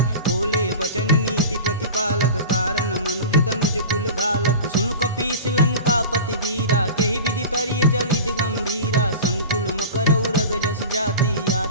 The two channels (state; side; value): inverted; both; correlation -0.33